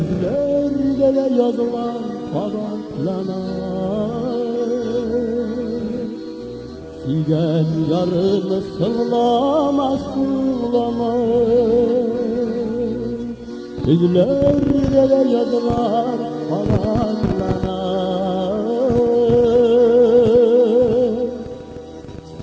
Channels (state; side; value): identical; both; correlation 1.00